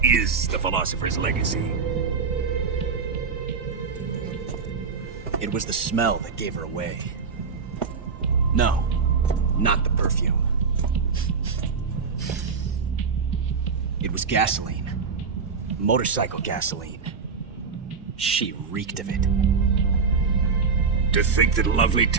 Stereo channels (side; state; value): left; quieter; 5.4 dB